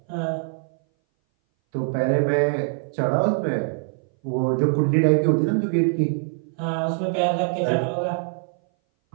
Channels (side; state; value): left; silent; 60 dB below the other